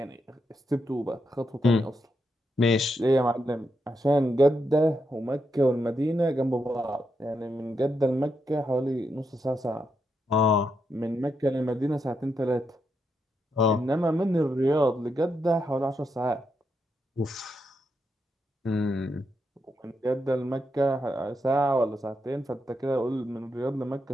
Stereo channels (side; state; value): both; normal; correlation 0.82